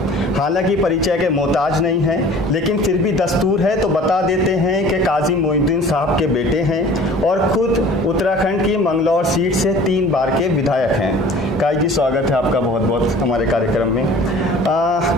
हालांकि परिचय के मोहताज नहीं हैं, लेकिन फिर भी दस्तूर है तो बता देते हैं कि काजी मोइनुद्दीन साहब के बेटे हैं और खुद उत्तराखंड की मंगलौर सीट से 3 बार के विधायक हैं। काजी जी, स्वागत है आपका बहुत बहुत हमारे कार्यक्रम में।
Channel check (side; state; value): both; normal; correlation 0.46